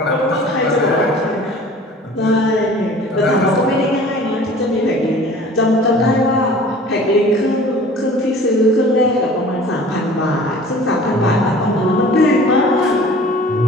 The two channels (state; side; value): normal; both; correlation 0.45